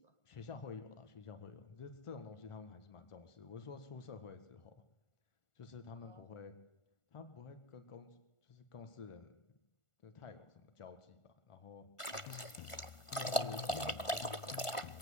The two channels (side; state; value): right; late; 1.4 ms